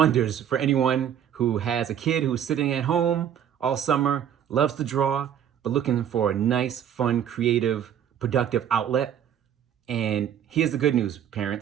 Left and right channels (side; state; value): left; quieter; 9.5 dB